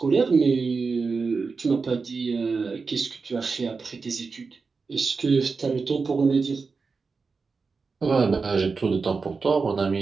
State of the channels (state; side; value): quieter; left; 4.6 dB